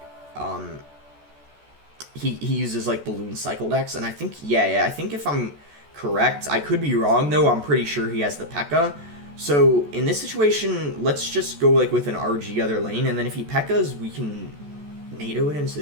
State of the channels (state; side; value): late; left; 14 ms